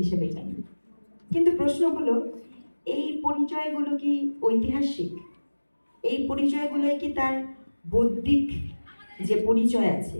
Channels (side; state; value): both; inverted; correlation -1.00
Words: হিসেবে জানি। কিন্তু প্রশ্ন হলো, এই পরিচয়গুলো কি ঐতিহাসিক? এই পরিচয়গুলো কি তার বৌদ্ধিক যে পরিচয় আছে